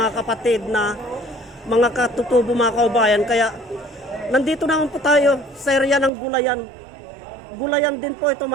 kapatid na mga katutubo mga kaubayan. Kaya nandito naman po tayo sa area ng Gulayan. Gulayan din po ito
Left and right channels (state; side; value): drops out; left; at 6.1 s